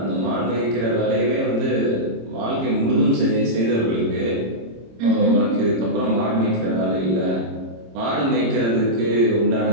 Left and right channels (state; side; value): late; left; 26 ms